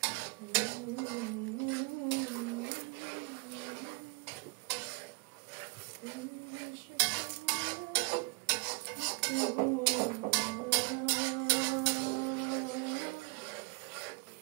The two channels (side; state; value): left; quieter; 32.4 dB